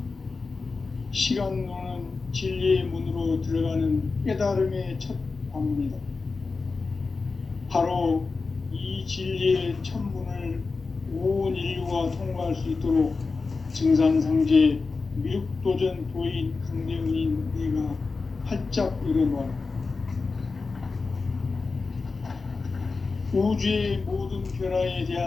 시간론은 진리의 문으로 들어가는 깨달음의 첫 관문이다. 바로 이 진리의 첫 문을 온 인류가 통과할 수 있도록 증산상제 미륵도전 도인 강대훈인 네가 활짝 열어놓아라. 우주의 모든 변화에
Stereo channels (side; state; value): right; quieter; 4.2 dB